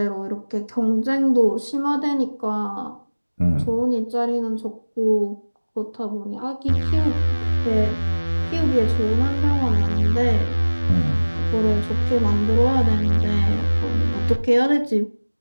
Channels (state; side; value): inverted; both; correlation -1.00